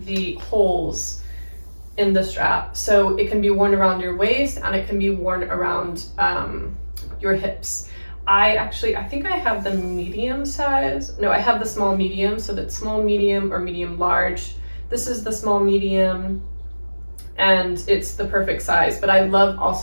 the holes in the strap. So it can be worn around your waist and it can be worn around your hips. I think I have the medium size. No, I have the small medium. So that's small medium or medium large. This is the small medium, and it's the perfect size. But I love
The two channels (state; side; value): inverted; both; correlation -1.00